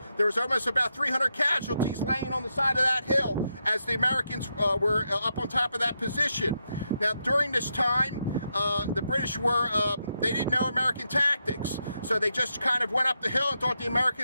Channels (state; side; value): inverted; both; correlation -0.83